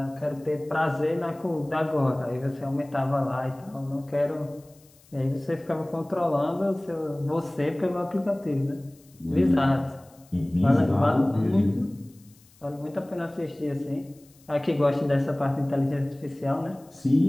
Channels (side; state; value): left; noise; hiss, 29 dB below the sound